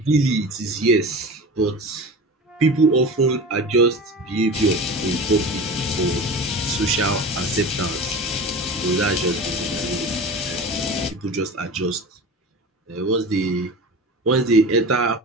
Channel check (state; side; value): normal; both; correlation 0.33